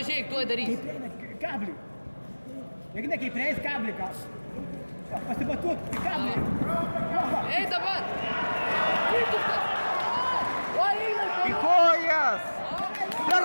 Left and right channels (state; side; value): inverted; both; correlation -1.00